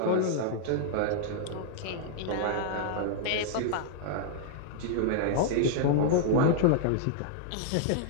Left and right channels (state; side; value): different; both; correlation -0.01